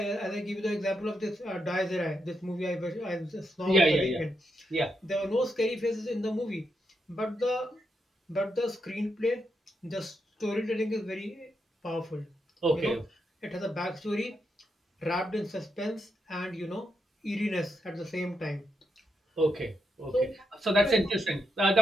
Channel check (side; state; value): both; normal; correlation 0.83